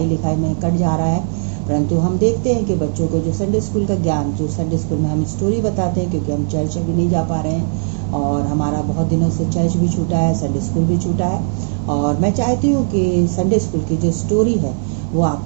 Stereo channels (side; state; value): left; silent; 66 dB below the other